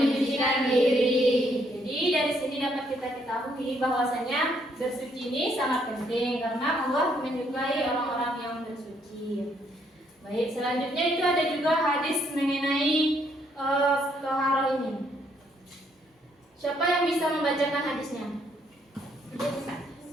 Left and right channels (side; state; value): both; normal; correlation 0.71